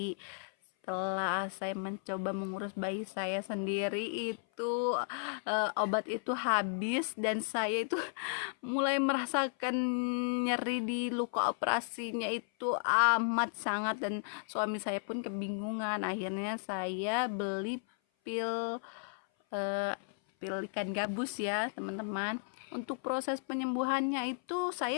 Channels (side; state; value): right; silent; 55 dB below the other